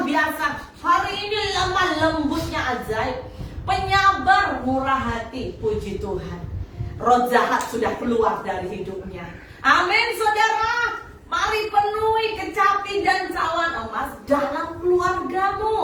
biasa, hari ini lemah lembutnya ajaib, penyabar, murah hati. Puji Tuhan, roh jahat sudah keluar dari hidupnya. Amin saudara. Mari penuhi kecapi dan cawan emas dalam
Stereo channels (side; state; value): both; identical; correlation 1.00